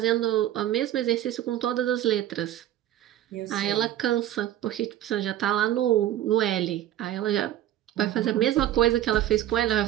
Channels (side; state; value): left; quieter; 12.6 dB